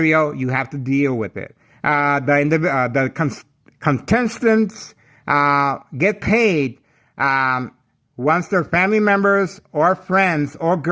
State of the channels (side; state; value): both; identical; correlation 1.00